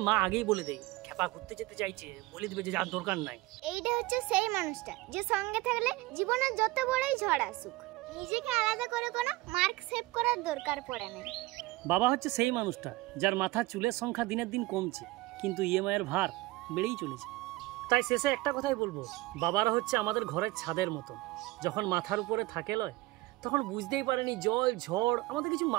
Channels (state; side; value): quieter; left; 19.8 dB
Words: মা আগেই বলে দেয় খেপা ঘুরতে যেতে চাইছে, বলে দিবে যে যার দরকার নাই। এইটা হচ্ছে সেই মানুষটা যে সঙ্গে থাকলে জীবনের যত বড়ই ঝড় আসুক নিজেকে আলাদা করে কোনো মার্ক সেভ করার দরকার পড়ে না। বাবা হচ্ছে সেই মানুষটা যার মাথার চুলের সংখ্যা দিনের দিন কমছে, কিন্তু ইএমআই এর ভার বেড়েই চলেছে। তাই শেষে একটা কথাই বলবো, বাবারা হচ্ছে আমাদের ঘরের ছাদের মতন। যখন মাথার উপরে থাকে লয় তখন বুঝতেই পারেনি জল ঝড় আমাদের কিছু